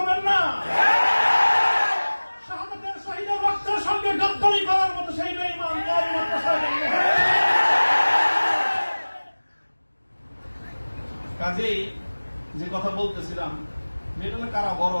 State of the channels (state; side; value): inverted; both; correlation -1.00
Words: না। শাহাদাতের শহীদের রক্তের সঙ্গে গদ্দারি করার মতো সেই বেঈমান কাজেই যে কথা বলতেছিলাম, এটা হলো কারা